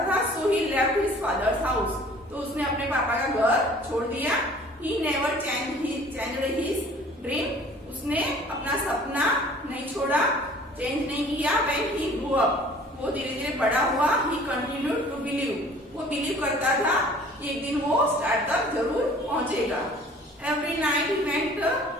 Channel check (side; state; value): both; normal; correlation 0.50